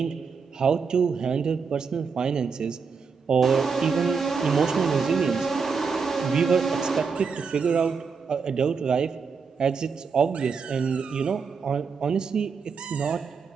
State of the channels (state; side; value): quieter; left; 5.5 dB